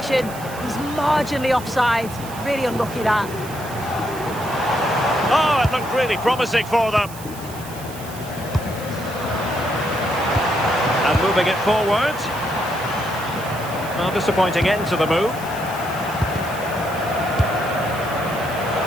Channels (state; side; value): noise; right; hiss, 16 dB below the sound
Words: He's marginally offside. Really unlucky that. Oh, it looked really promising for them. And moving it forward. Well, disappointing end to the move.